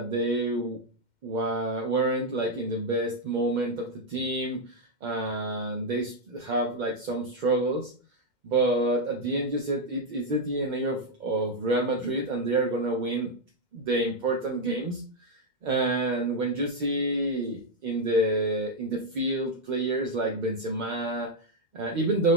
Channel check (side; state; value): left; late; 2.1 ms